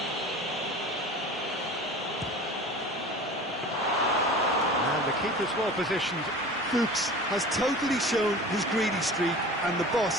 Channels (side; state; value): both; normal; correlation 0.38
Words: Keeper's well positioned. Fuchs has totally shown his greedy streak, and the